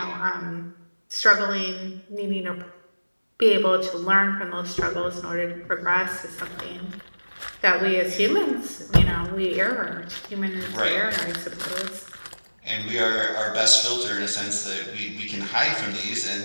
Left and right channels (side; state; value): both; inverted; correlation -1.00